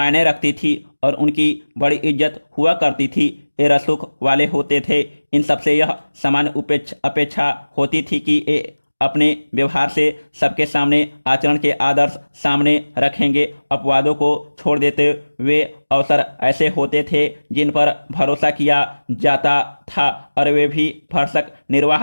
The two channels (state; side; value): inverted; both; correlation -1.00